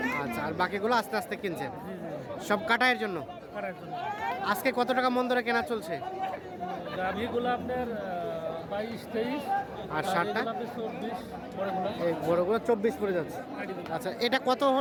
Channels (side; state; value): both; identical; correlation 1.00